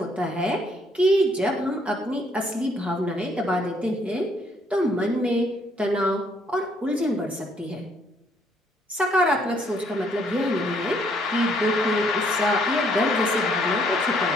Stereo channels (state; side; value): normal; both; correlation 0.67